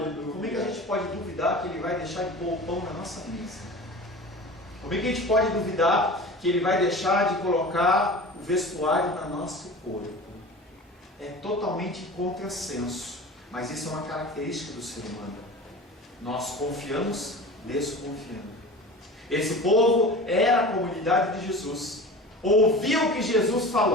Como é que a gente pode duvidar que Ele vai deixar de pôr o pão na nossa mesa? Como é que a gente pode duvidar que Ele vai deixar de colocar o vestuário no nosso corpo? É totalmente contrassenso, mas isso é uma característica do ser humano. Nós confiamos desconfiando. Esse povo era a comunidade de Jesus, ouviu o que Jesus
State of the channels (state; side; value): normal; both; correlation 0.36